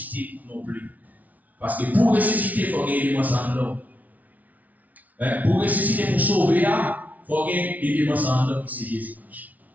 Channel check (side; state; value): left; late; 0.074 ms